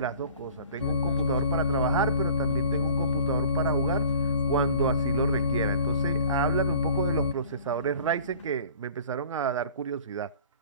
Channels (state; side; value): inverted; both; correlation -0.47